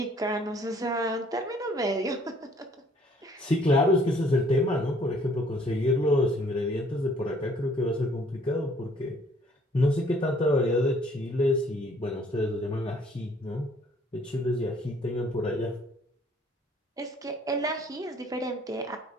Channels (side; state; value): both; normal; correlation 0.60